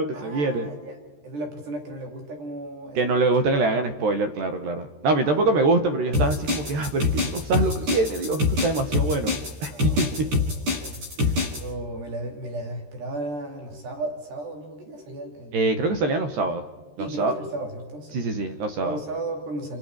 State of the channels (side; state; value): left; late; 13 ms